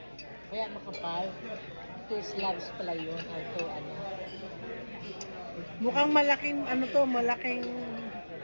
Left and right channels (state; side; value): inverted; both; correlation -1.00